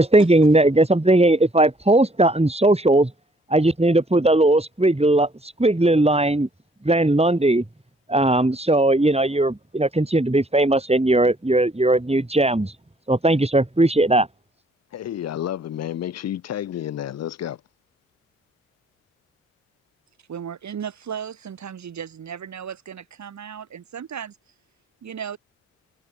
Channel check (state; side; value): normal; both; correlation 0.62